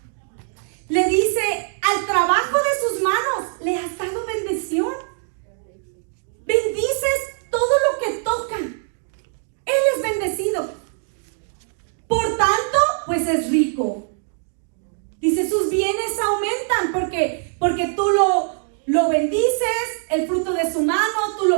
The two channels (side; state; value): left; silent; 60 dB below the other